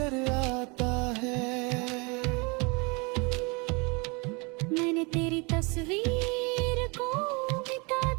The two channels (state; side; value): quieter; left; 29.5 dB